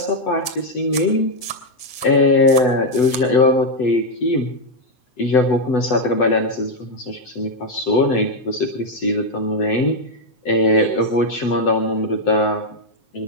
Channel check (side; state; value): right; late; 8.0 ms